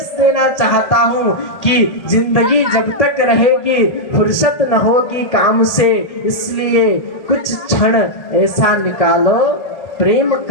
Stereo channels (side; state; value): right; late; 1.8 ms